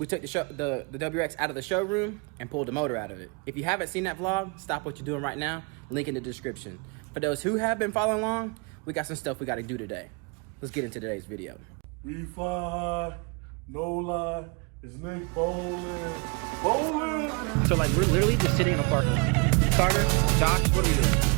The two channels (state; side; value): quieter; left; 32.0 dB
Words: took the WX out of the showroom and pulled the motor out of it. If you haven't seen that vlog, stop what you're doing right now, link in the description. For those who have been following along, we got some stuff we got to do today. Let's get into today's video. We fly, no lie, it's Nick Bowling. Bowling! So like we're literally just sitting in a parking lot. Carter, Josh, what are we